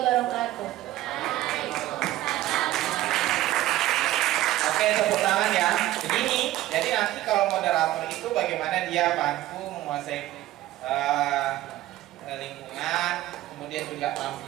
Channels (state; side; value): quieter; left; 15.3 dB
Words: Oke, tepuk tangan ya. Begini, jadi nanti kalau moderator itu bagaimana dia mampu menguasai lingkungan, kemudian juga